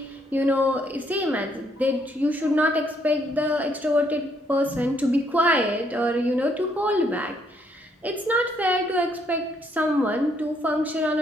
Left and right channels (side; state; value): both; normal; correlation 0.71